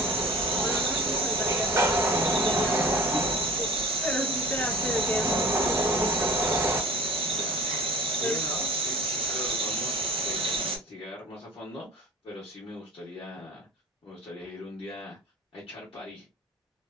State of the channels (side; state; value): both; normal; correlation 0.41